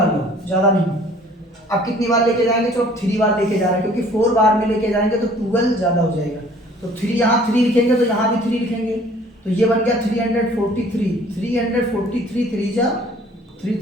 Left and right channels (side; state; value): both; normal; correlation 0.54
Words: लो, ज्यादा नहीं। अब कितनी बार लेके जाएंगे, चलो 3 बार लेके जा रहे हैं, क्योंकि 4 बार में लेके जाएंगे तो 12 ज्यादा हो जाएगा। तो 3 यहाँ 3 लिखेंगे तो यहाँ भी 3 लिखेंगे, तो ये बन गया 343। 343 3 जा 3